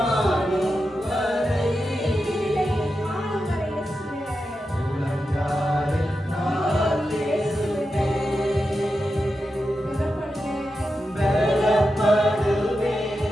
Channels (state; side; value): normal; both; correlation 0.89